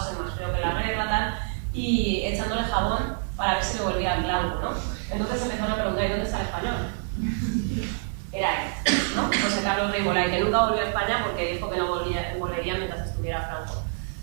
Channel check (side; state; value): left; silent; 59 dB below the other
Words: más frío que la regla, tal, y echándole jabón para ver si le volvía en blanco, ¿no? Entonces empezaron a preguntar, ¿y dónde está el español? Era él, ¿no? José Carlos Gremolay, que nunca volvió a España porque dijo que no volvería mientras estuviera Franco.